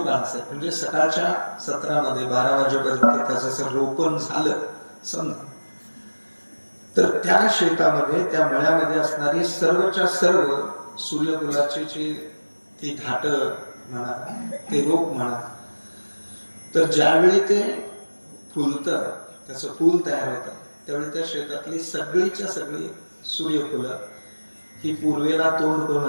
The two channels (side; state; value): both; inverted; correlation -1.00